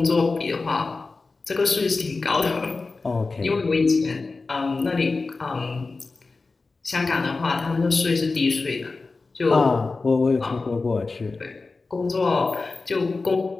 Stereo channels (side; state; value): right; quieter; 3.8 dB